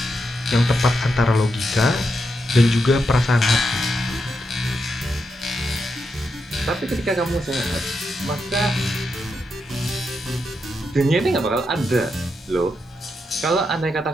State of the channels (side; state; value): both; normal; correlation 0.84